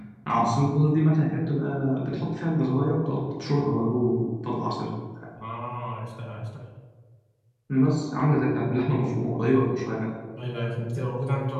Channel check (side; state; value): both; identical; correlation 1.00